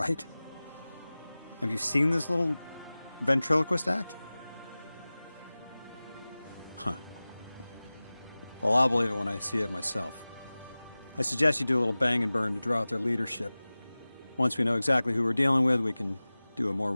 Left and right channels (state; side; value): inverted; both; correlation -0.98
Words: Have you seen this little ventriloquist act? Huh. Well, I'll believe it when I see it myself. I suggest you do a little bang and burn to draw out their leadership. Once we know exactly who we're dealing with, we can do a more